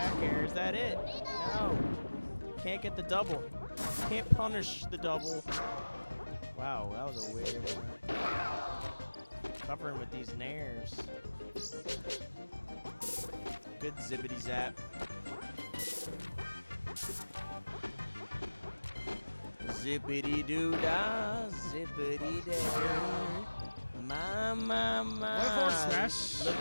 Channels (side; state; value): both; inverted; correlation -1.00